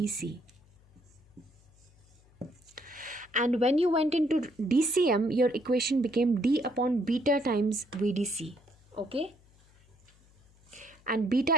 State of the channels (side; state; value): left; noise; hum, 29 dB below the sound